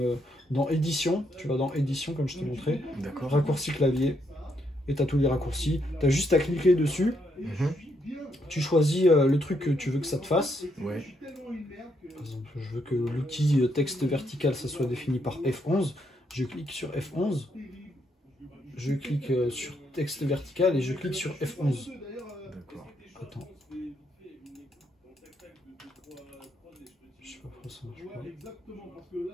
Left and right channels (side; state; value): both; normal; correlation 0.76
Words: dans édition, tu vas dans édition, comme je t'ai montré. D'accord. Raccourci clavier. Et tu as tous les raccourcis. Tu as juste à cliquer dessus. Tu choisis le truc que tu veux que ça te fasse. Ouais. Par exemple, je veux que l'outil texte vertical, ça soit défini par F11. Je clique sur F11. Je clique sur texte vertical et je clique sur F11. D'accord. Attends. Je sais pas pourquoi ça marche pas.